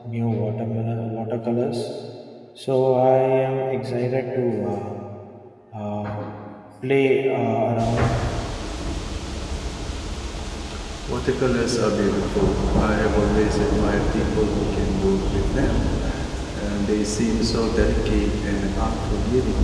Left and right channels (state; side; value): identical; both; correlation 1.00